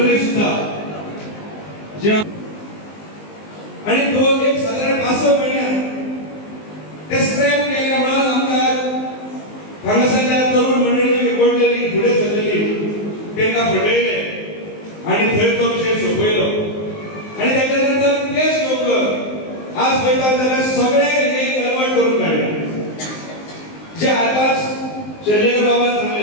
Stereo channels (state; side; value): late; right; 19 ms